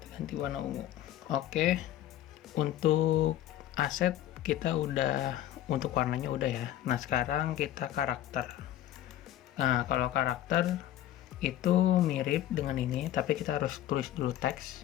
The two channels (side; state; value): right; quieter; 12.7 dB